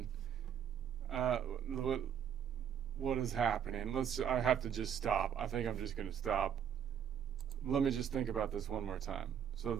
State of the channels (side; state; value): left; quieter; 8.6 dB